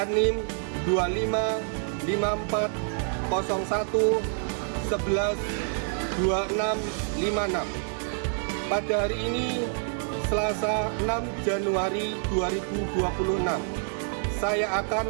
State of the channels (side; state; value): left; silent; 60 dB below the other